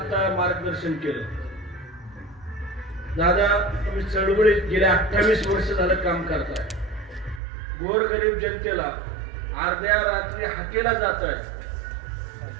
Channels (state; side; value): drops out; left; at 7.4 s